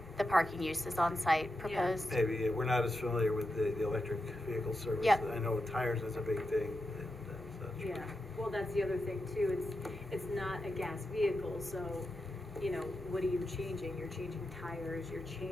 the parking uses on site proposed. Maybe, we're not as familiar with the electric vehicle service. Yep. I know tires is a big thing and such. Yeah, well, that's the other thing too, it's not a gas vehicle, so, what are you changing? You're changing tires, you're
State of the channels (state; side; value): normal; both; correlation 0.88